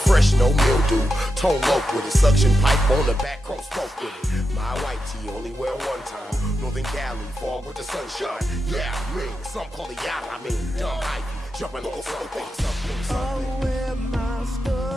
Fresh, no mildew, tone low with it. Suction pipe on the back, chrome smoke with it. My white tee only wear one time. Northern Cali, fog with the sunshine. Yeah, me, some call it yada. I mean, dumb hype, jumping on something. I wear my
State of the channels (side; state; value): both; normal; correlation 0.87